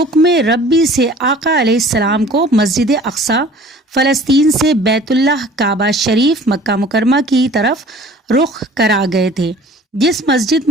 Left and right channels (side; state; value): both; normal; correlation 0.48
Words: ربی سے آقا علیہ السلام کو مسجد اقصی فلسطین سے بیت اللہ کعبہ شریف مکہ مکرمہ کی طرف رخ کرا گئے تھے۔ جس مسجد